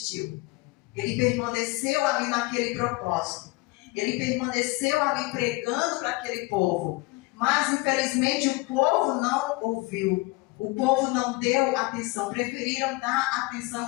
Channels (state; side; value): quieter; right; 23.6 dB